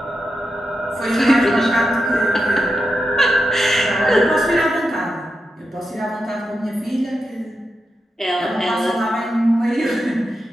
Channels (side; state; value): both; normal; correlation 0.87